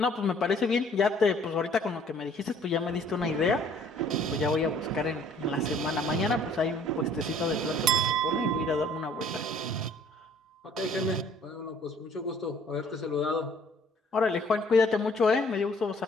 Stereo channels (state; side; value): normal; both; correlation 0.57